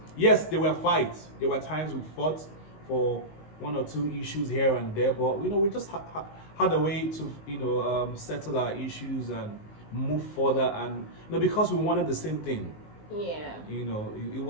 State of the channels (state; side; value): late; right; 19 ms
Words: Yes, there were fights. There were times we fought for one or two issues here and there. But we just had a way to settle our issues and move further. And because we wanted the same thing. Yeah. It